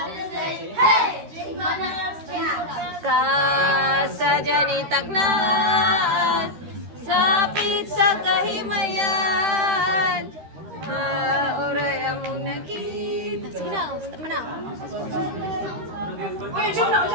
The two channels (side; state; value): left; late; 13 ms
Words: sleigh. Hey, jingle bells, jingle bells. Kasadya ni Taglan, sapit sa kahimayan. Oray among nakita. Sige na, tama na. Uy, jump na.